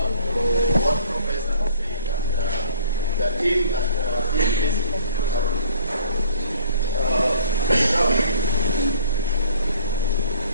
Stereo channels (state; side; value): inverted; both; correlation -0.54